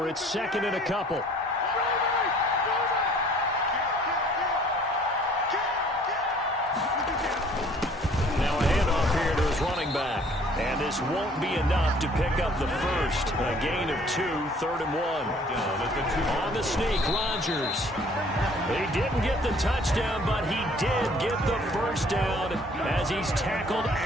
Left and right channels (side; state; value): both; normal; correlation 0.56